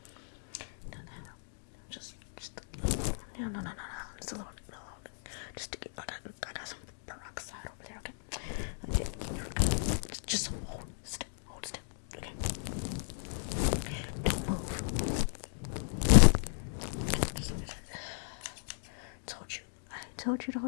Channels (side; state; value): right; silent; digital silence